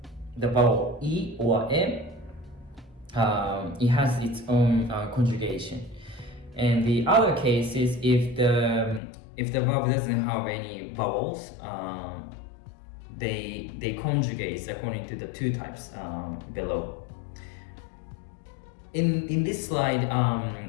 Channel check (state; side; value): drops out; right; at 9.0 s